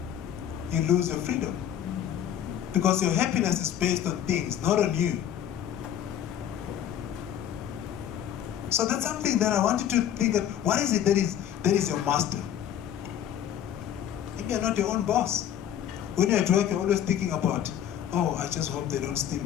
you lose your freedom. Because your happiness is based on things, not on you. So that's something that I want you to think of. What is it that is your master? Maybe you're not your own boss. When you're at work, you're always thinking about, I just hope they don't steal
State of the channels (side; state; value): right; quieter; 10.2 dB